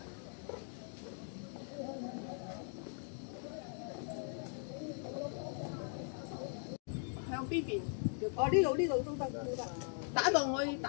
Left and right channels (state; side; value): silent; right; 51 dB below the other